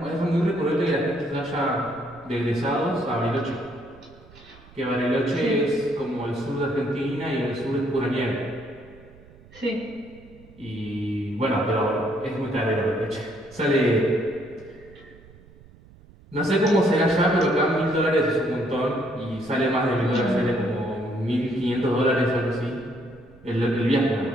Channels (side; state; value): right; noise; rumble, 24 dB below the sound